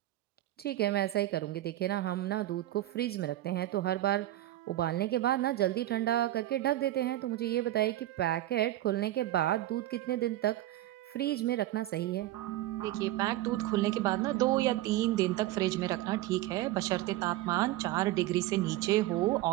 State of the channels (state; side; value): quieter; left; 15.1 dB